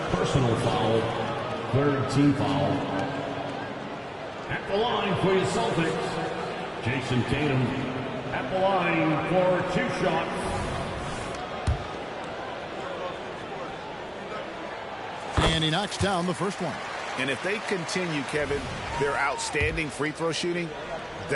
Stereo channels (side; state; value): both; identical; correlation 1.00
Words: personal foul, third team foul. At the line for your Celtics, Jason Tatum at the line for 2 shots. And he knocks down the first one. And if they continue, Kevin, their outstanding free throw shooting,